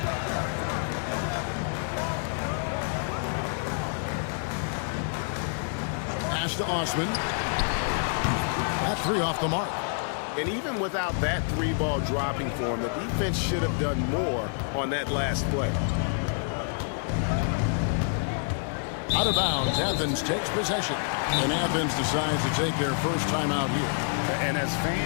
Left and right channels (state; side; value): silent; right; 60 dB below the other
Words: Pass to Osman. That 3 off the mark. And even without that 3-ball dropping for him, the defense should have done more on that last play. Out of bounds, Athens takes possession. And Athens decides to take their first time out here. And as